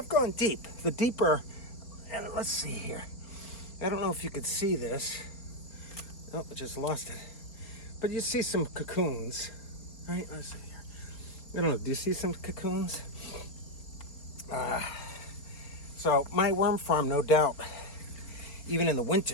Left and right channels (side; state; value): right; late; 4.5 ms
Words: gone deep. The deeper, and let's see here. I don't know if you could see this. Oh, I just lost it. But you see some cocoons, right? Let's see here. I don't know, do you see some cocoons? So my worm farm, no doubt, even in the winter,